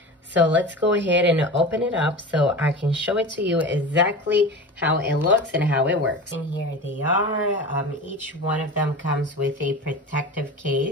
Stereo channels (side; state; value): both; normal; correlation 0.31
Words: So let's go ahead and open it up so I can show it to you exactly how it looks and how it works. And here they are. Each one of them comes with a protective